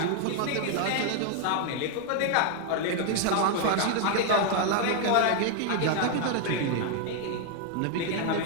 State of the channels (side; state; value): both; different; correlation 0.00